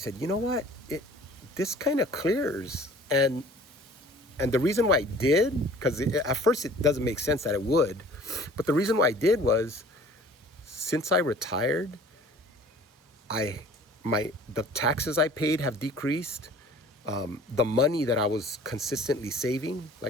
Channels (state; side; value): normal; both; correlation 0.49